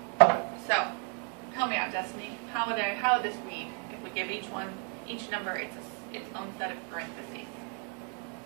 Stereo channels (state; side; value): quieter; left; 39.3 dB